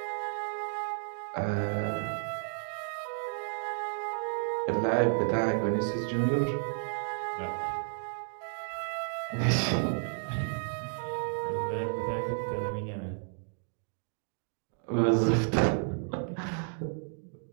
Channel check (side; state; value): left; silent; 56 dB below the other